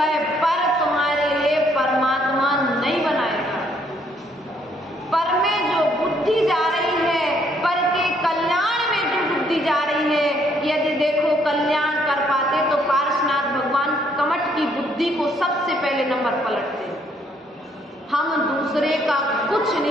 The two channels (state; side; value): normal; both; correlation 0.68